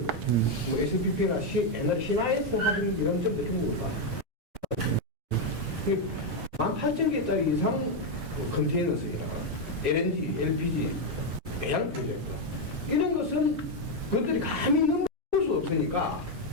뭐 SPP나 옛날 신화에서 하던 이런 점도 중국을 봐. 18,000개짜리 이상 컨테이너 쓰기나 LNG, LPG, 배양 프로젝트 이런 것은 그것들이 감히 넘을 수 없으니까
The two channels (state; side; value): normal; both; correlation 0.03